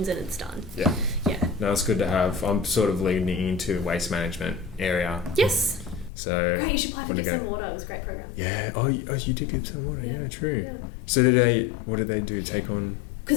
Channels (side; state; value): right; drops out; at 6.1 s